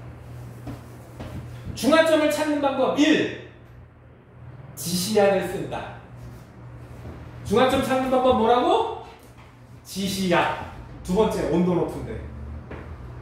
중화점을 찾는 방법 1. 지시약을 쓴다. 중화점 찾는 방법 뭐라고? 지시약. 두 번째, 온도 높은데.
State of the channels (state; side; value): identical; both; correlation 1.00